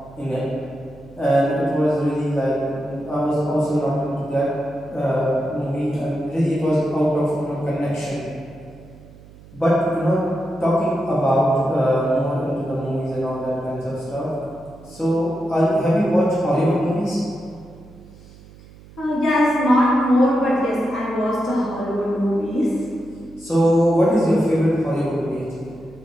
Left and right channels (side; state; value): right; noise; hum, 22 dB below the sound